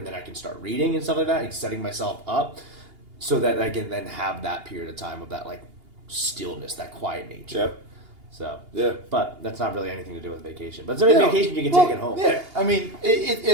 then I can start reading and stuff like that and setting myself up so that I can then have that period of time of that like stillness, that quiet nature. Yep. So yeah, but that's not really anything to do with vacation. But it's a vacation you can take at home. Yeah, I mean,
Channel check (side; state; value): left; late; 2.8 ms